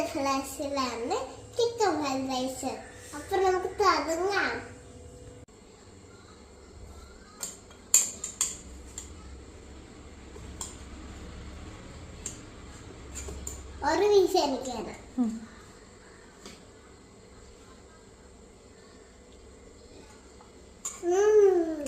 ഫ്ലാഷിലാണ് chicken fried rice. അപ്പൊ നമുക്ക് തുടങ്ങാം. ഒരു വീശ് എനിക്കാണ്.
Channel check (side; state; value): both; identical; correlation 1.00